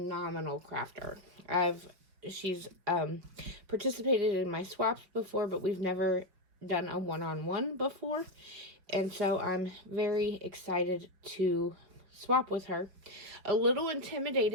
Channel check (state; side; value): late; left; 5.7 ms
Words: crafter. She's participated in my swaps before, but we've never done a one-on-one before, and so I'm very excited to swap with her. A little